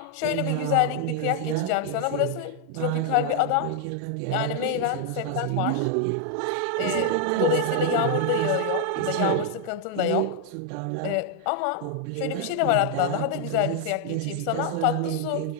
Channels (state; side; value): different; both; correlation 0.00